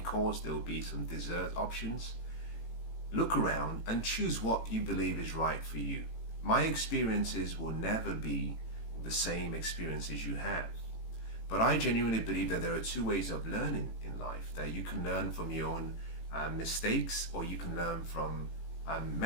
course, there will be some dessert options. Look around and choose what you believe is right for you. My experiences will never be the same experiences you have. But I genuinely believe that there are two ways of learning in life. That you can learn from your own mistakes, or you can learn from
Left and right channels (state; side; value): late; right; 18 ms